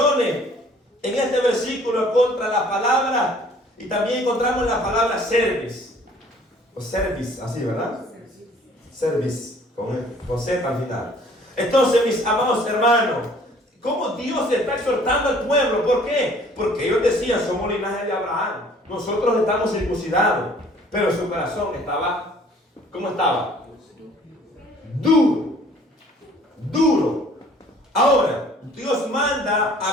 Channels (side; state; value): both; normal; correlation 0.55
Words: en este versículo contra la palabra, y también encontramos la palabra service, o service, así, ¿verdad? Service, con Z al final. Entonces, mis amados hermanos, ¿cómo Dios está exhortando al pueblo? ¿Por qué? Porque ellos decían: somos linaje de Abraham, nosotros estamos circuncidados, pero su corazón estaba, ¿cómo estaba? Duro, duro. Ahora, Dios manda